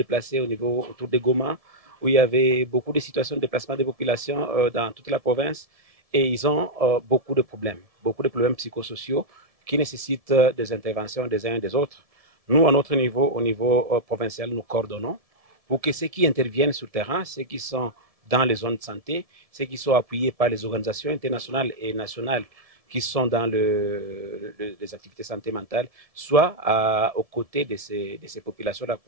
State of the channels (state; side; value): late; left; 1.7 ms